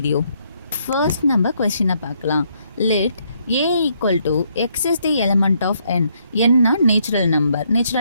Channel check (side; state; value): both; inverted; correlation -0.72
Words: First நம்ம கொஸ்டினை பார்க்கலாம். Let a equal to x is the element of n. n na natural